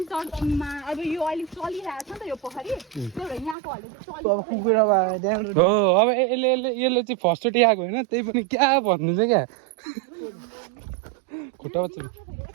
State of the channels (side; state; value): left; drops out; at 3.6 s